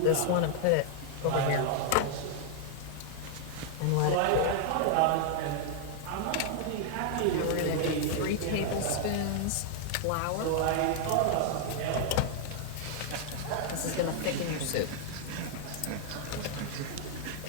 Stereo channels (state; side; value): different; both; correlation 0.00